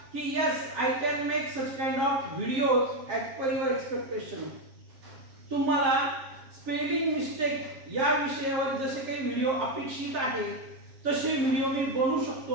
की yes I can make such kind of videos as per your expectation. तुम्हाला स्पेलिंग मिस्टेक या विषयावर जसे काही व्हिडिओ अपेक्षित आहे तसे व्हिडिओ मी बनवू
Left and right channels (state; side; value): late; left; 7.4 ms